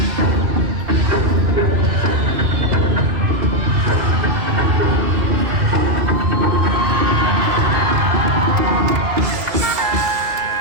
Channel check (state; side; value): late; left; 2.6 ms